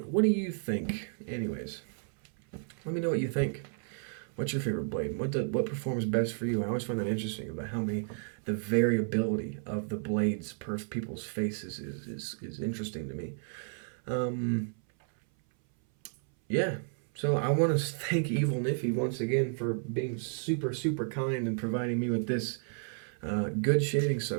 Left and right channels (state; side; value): silent; left; 56 dB below the other